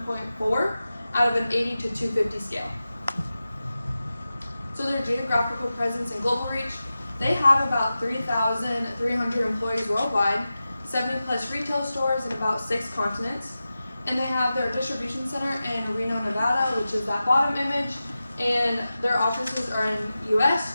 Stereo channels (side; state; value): both; inverted; correlation -0.94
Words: out of an 80 to 250 scale. So their geographical presence and global reach, they have about 3,300 employees worldwide, 70 plus retail stores in about 6 continents, and they have their distribution center in Reno, Nevada, which is that bottom image, and their offices are in US,